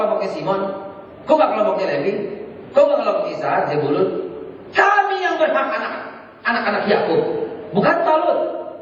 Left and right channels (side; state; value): both; identical; correlation 1.00